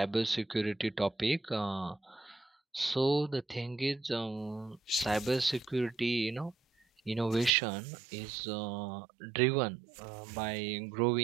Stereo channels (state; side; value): drops out; left; at 7.5 s